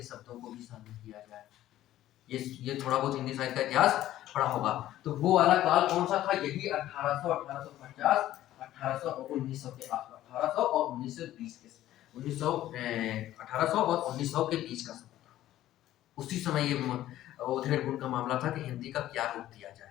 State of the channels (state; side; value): quieter; right; 13.7 dB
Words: शब्दों को भी शामिल किया जाए। ये थोड़ा बहुत हिंदी साहित्य का इतिहास पढ़ा होगा। तो वो वाला काल कौन सा था? यही 1800, 1850, 1800 और 1900 के आसपास, 1800 और 1920 के 1800 और 1900 के बीच का समय था। उसी समय ये उधेड़ बुन का मामला था कि हिंदी का क्या रूप दिया